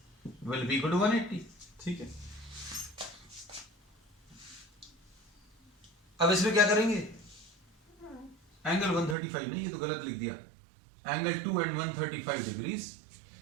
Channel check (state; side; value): drops out; left; at 9.2 s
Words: will be equal to 180। ठीक है, अब इसमें क्या करेंगे, एंगल 135 नहीं, ये तो गलत लिख दिया, angle 2 and 135 degrees,